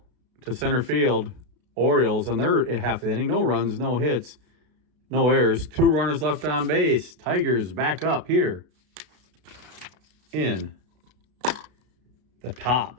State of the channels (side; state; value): left; late; 33 ms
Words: to center field. Orioles, and they're at half the inning. No runs, no hits, no errors. 2 runners left on base. Tigers back up here in the